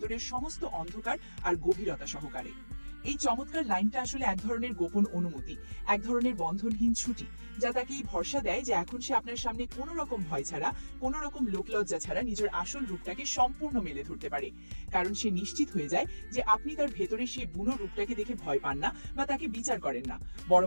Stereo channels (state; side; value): inverted; both; correlation -1.00